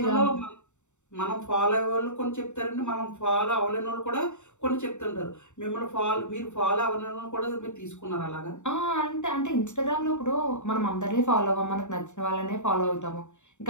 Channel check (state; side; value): late; right; 0.84 ms